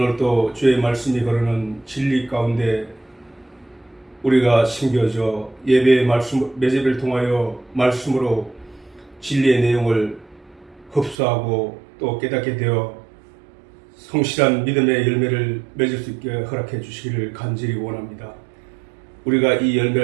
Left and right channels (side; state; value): left; drops out; at 11.2 s